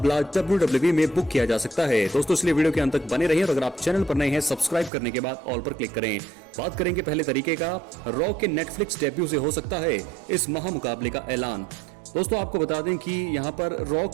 WWE में बुक किया जा सकता है। दोस्तों इसलिए वीडियो के अंत तक बने रहिए और अगर आप चैनल पर नए हैं सब्सक्राइब करने के बाद ऑल पर क्लिक करें। बात करेंगे पहले तरीके का, रॉक के नेटफ्लिक्स डेब्यू से हो सकता है इस महामुकाबले का ऐलान। दोस्तों आपको बता दें कि यहाँ पर रॉक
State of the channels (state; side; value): drops out; left; at 4.9 s